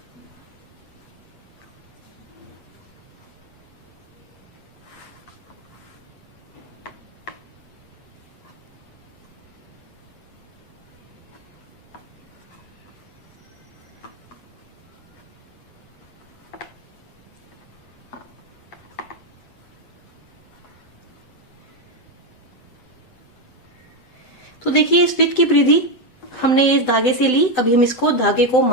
तो देखिए इस वृत्त की परिधि हमने इस धागे से ली। अभी हम इसको धागे को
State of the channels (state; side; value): late; right; 7.9 ms